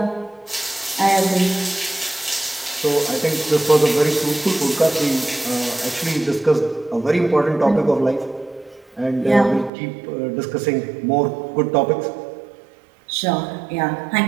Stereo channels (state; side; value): drops out; left; at 9.7 s